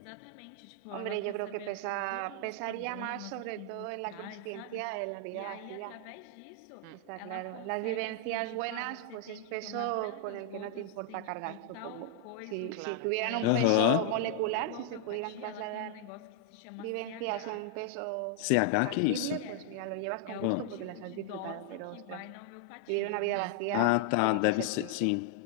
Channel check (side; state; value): both; different; correlation 0.00